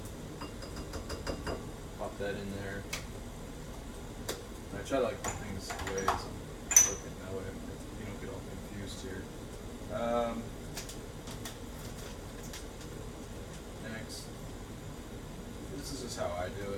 Pop that in there. And I try to like put things away as I'm cooking, that way you don't get all confused here. Next, this is just how I do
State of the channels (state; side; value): identical; both; correlation 1.00